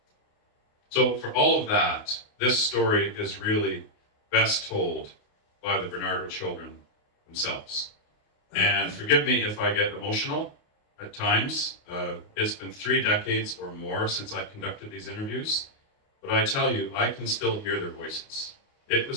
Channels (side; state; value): right; late; 28 ms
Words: So for all of that, this story is really best told by the Barnardo children themselves. And forgive me if I get emotional at times. It's been 3 decades or more since I conducted these interviews, but I tell you, I can still hear their voices. It